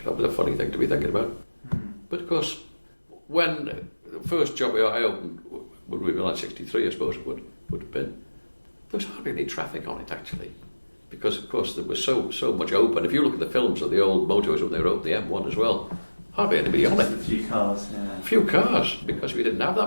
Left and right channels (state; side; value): inverted; both; correlation -1.00